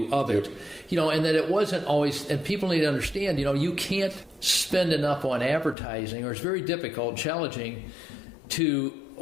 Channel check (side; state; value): right; drops out; at 5.8 s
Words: of it. And that it wasn't always, and people need to understand, you can't spend enough on advertising, or it's very difficult, challenging to